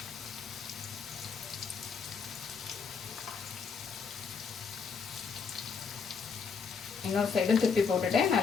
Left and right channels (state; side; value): quieter; right; 5.8 dB